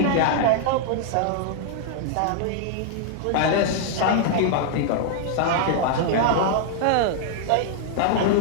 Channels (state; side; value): different; both; correlation -0.01